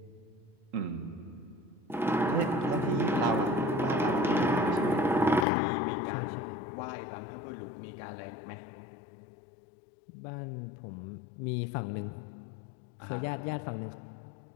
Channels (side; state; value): right; drops out; at 5.5 s